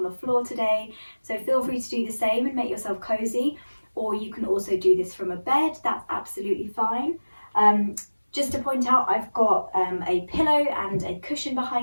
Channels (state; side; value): inverted; both; correlation -1.00